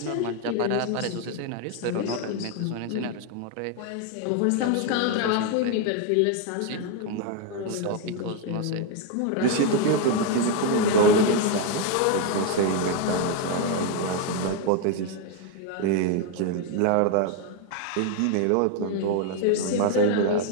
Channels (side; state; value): both; different; correlation 0.01